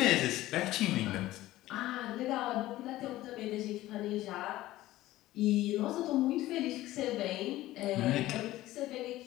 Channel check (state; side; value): quieter; right; 16.1 dB